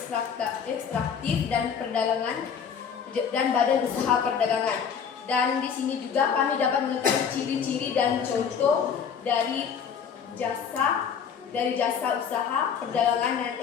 dan badan usaha perdagangan. Dan di sini juga kami dapat mengetahui ciri-ciri dan contoh dari jasa usaha perdagangan dan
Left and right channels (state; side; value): quieter; right; 7.1 dB